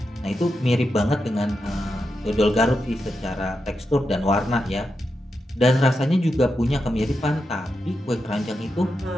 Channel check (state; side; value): normal; both; correlation 0.87